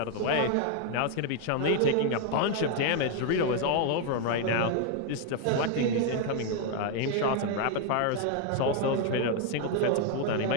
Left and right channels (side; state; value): both; different; correlation 0.00